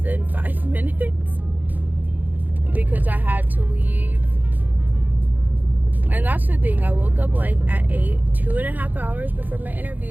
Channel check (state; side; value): late; left; 0.085 ms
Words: 5 minutes because I had to leave. And that's the thing, I woke up like at 8, 2.5 hours before my